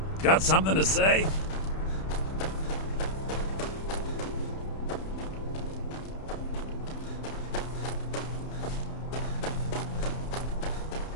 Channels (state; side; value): late; right; 31 ms